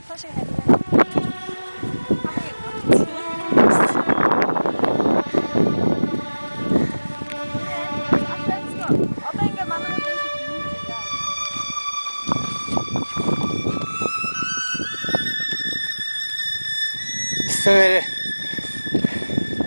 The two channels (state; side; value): inverted; both; correlation -1.00